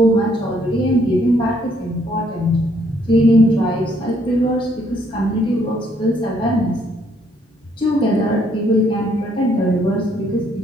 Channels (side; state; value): both; normal; correlation 0.68